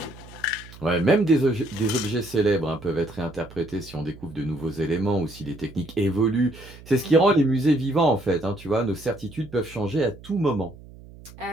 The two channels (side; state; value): right; noise; hum, 19 dB below the sound